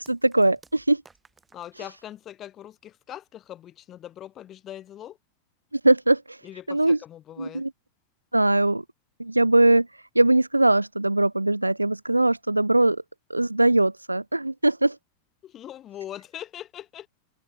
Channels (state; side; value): inverted; both; correlation -0.99